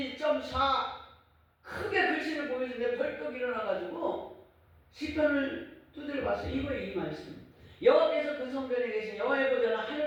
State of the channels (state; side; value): identical; both; correlation 1.00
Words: 크게 글씨를 보여주는데 벌떡 일어나가지고 시편을 두드려 봤어요. 이거예요, 이 말씀. 여호와께서 그 성전에 계신 여호와의 보좌는